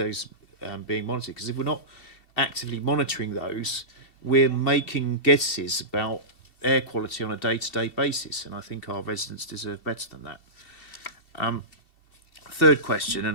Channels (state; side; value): late; right; 2.7 ms